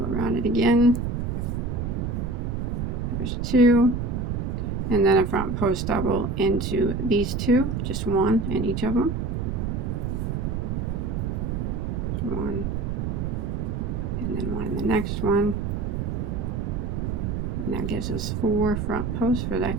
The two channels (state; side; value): noise; right; rumble, 1 dB below the sound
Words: around it again. There's 2. And then a front post double into these 2, just 1 in each of them. 1, and then 1 in the next one. And that gives us 4 front posts for